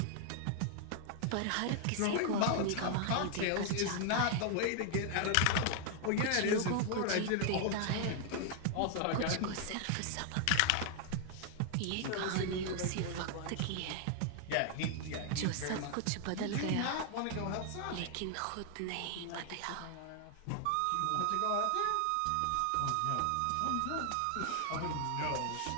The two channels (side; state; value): both; different; correlation 0.00